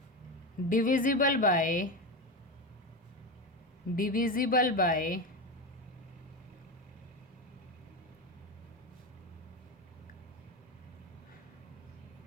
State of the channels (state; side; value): normal; both; correlation 0.18